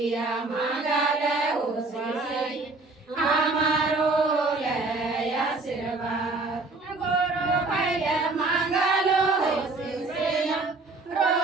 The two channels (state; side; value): quieter; left; 3.5 dB